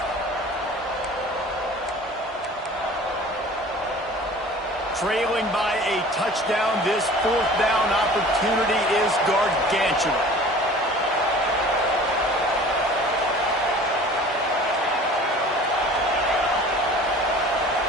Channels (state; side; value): normal; both; correlation 0.44